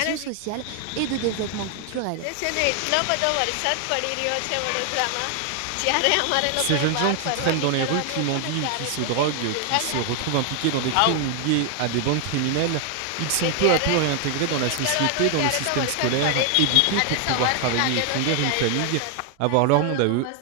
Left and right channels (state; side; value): different; both; correlation 0.00